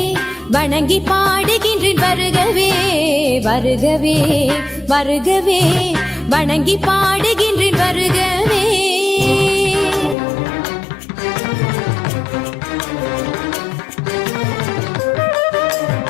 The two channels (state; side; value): drops out; right; at 10.2 s